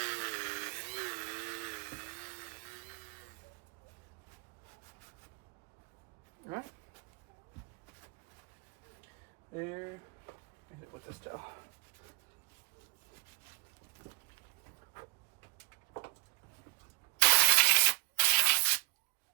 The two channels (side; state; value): left; quieter; 26.4 dB